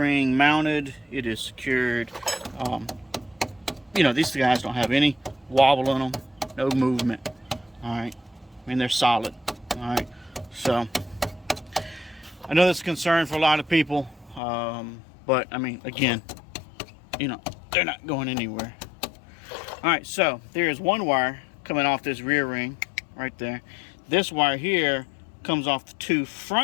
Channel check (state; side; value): drops out; right; at 14.4 s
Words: mounted. It is secured. You know, these guys don't have any wobble in them, no movement. All right, I mean, they're solid. All right, so I know that's a concern for a lot of people, but I mean, again, you know, they're not going anywhere. All right, so there is one wire coming off this rear ring right there. This wire here comes off the two